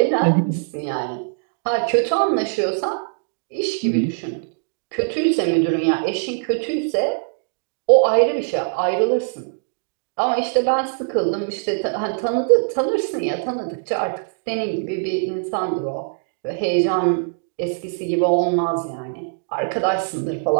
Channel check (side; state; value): left; silent; digital silence